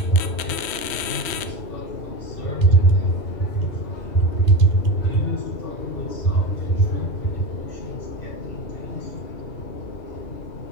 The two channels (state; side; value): late; right; 3.1 ms